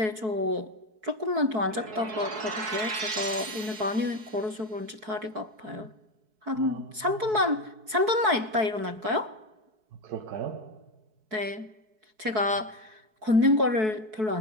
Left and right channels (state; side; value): late; left; 4.6 ms